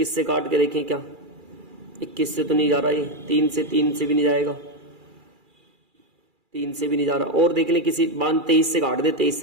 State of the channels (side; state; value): left; late; 2.4 ms